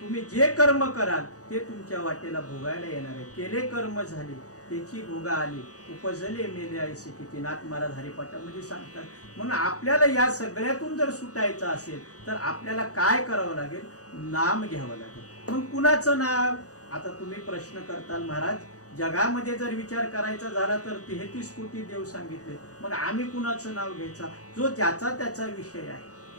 जे कर्म कराल ते तुमच्या वाटेला भोगायला येणार आहे. केले कर्म झाले त्याची भोगा आली, उपजले मेले ऐसे किती, नाथ महाराज हरिपाठामध्ये सांगतात. म्हणून आपल्याला या सगळ्यातून जर सुटायचं असेल तर आपल्याला काय करावं लागेल, नाम घ्यावं लागेल. मग कुणाचं नाव? आता तुम्ही प्रश्न करताल महाराज जगामध्ये जर विचार करायचा झाला तर 33 कोटी देव सांगितले, मग आम्ही कुणाचं नाव घ्यायचा? जो ज्याचा त्याचा विषय आहे.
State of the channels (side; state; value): right; late; 0.66 ms